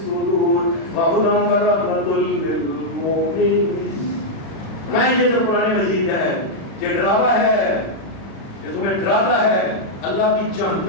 وہدی ورحمۃ للمؤمنین۔ میں یہ جو قرآن مجید ہے یہ ڈراوا ہے، یہ تمہیں ڈراتا ہے، اللہ کی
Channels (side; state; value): right; late; 36 ms